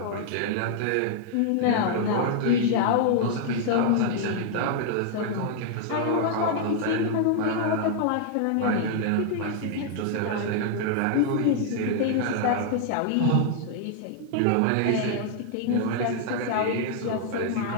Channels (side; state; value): both; different; correlation -0.01